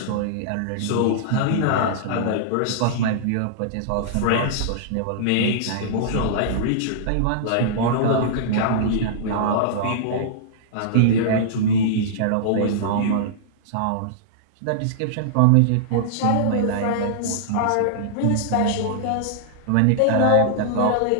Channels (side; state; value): both; different; correlation -0.02